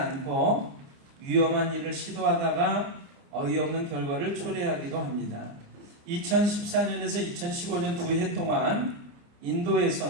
위험한 일을 시도하다가 어이없는 결과를 초래하기도 합니다. 2014년에서 2015년 2해 동안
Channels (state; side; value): late; left; 29 ms